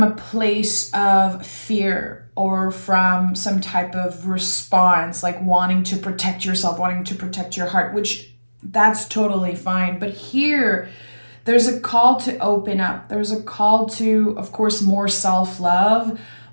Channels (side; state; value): both; inverted; correlation -1.00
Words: a place of fear or from some type of response, like wanting to protect yourself, wanting to protect your heart, which that's totally fine. But here, there's a call to open up. There's a call to, of course, more self-love,